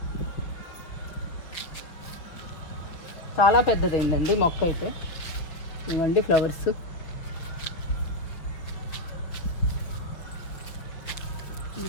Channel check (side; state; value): right; late; 5.9 ms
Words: చాలా పెద్దదైందండి మొక్క అయితే. ఇవ్వండి ఫ్లవర్స్.